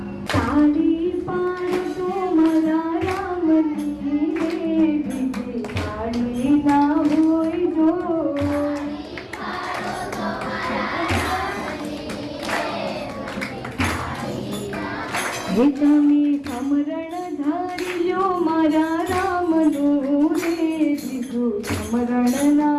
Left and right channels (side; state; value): both; identical; correlation 1.00